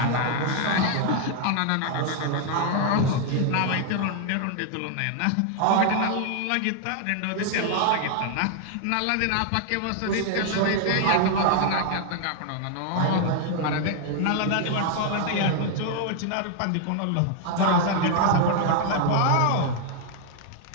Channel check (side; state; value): both; different; correlation 0.00